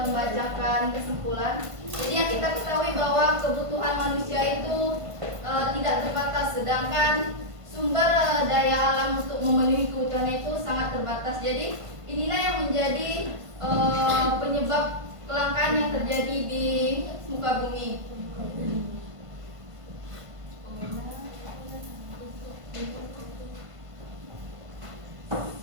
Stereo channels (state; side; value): late; left; 1.5 ms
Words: membacakan kesimpulan. Jadi yang kita ketahui bahwa kebutuhan manusia itu tidak terbatas, sedangkan sumber daya alam untuk memenuhi kebutuhan itu sangat terbatas. Jadi inilah yang menjadi penyebab kelangkaan yang terjadi di muka bumi.